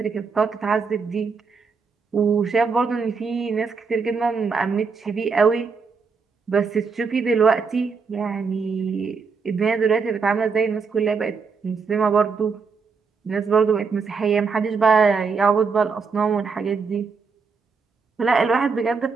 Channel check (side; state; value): left; quieter; 5.1 dB